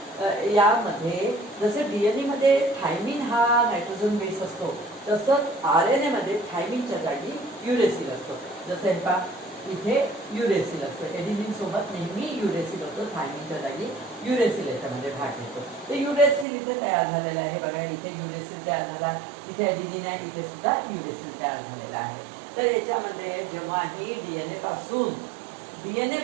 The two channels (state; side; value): drops out; left; at 16.4 s